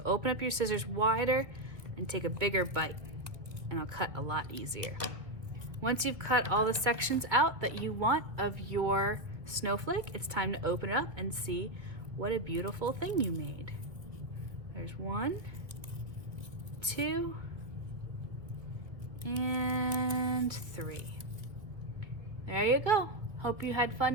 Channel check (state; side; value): late; left; 1.5 ms